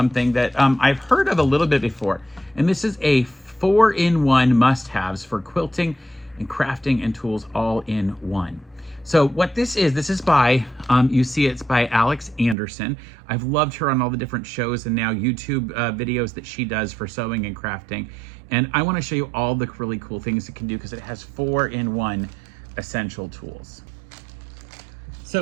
that I've heard of a little bit before. And this is a 4-in-1 must-haves for quilting and crafting and tools all in one. So what this is by, you see it's by Alex Anderson. I've loved her on all the different shows and now YouTube videos that she does for sewing and crafting. And I want to show you all the really cool things it can do because it has 4-in-1 essential tools.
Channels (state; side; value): drops out; left; at 12.6 s